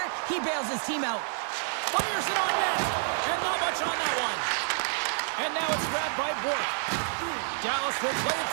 he bails his team out. Fires it on net, and not much on that one. And now it's grabbed by Bork. Dallas will play it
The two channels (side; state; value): left; silent; digital silence